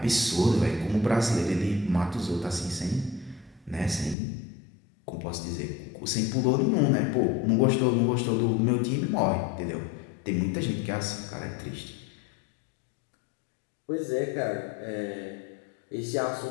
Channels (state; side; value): drops out; right; at 4.2 s